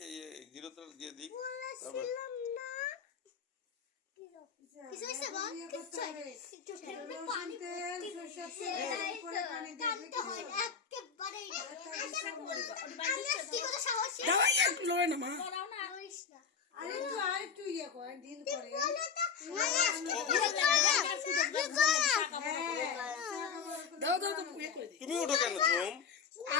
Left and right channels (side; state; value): right; quieter; 6.3 dB